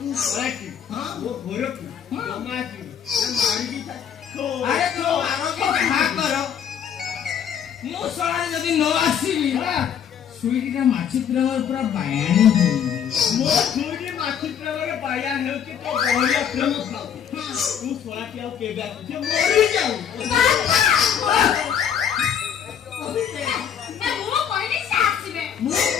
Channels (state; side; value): quieter; right; 8.5 dB